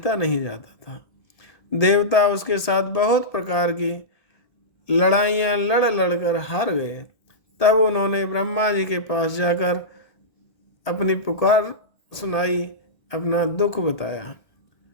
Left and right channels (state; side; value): late; right; 1.7 ms